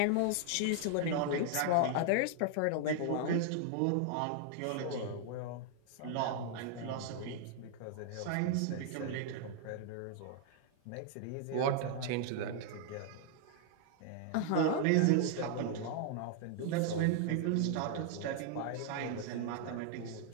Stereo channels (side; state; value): both; different; correlation 0.00